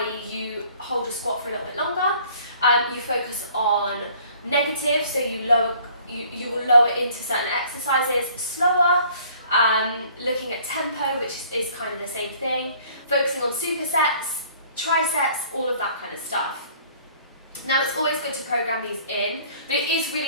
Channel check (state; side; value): inverted; both; correlation -0.55